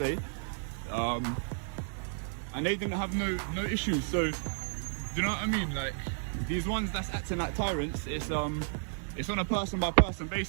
and they didn't have no issues. So, do you know what I mean? Like, these ones that's acting like tyrants, it's on a person by person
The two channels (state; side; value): silent; left; digital silence